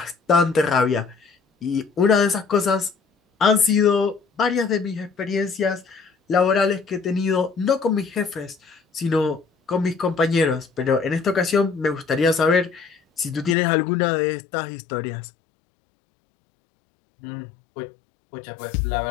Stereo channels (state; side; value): drops out; right; at 13.6 s